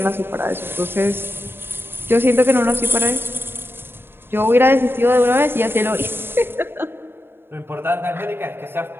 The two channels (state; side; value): late; left; 0.11 ms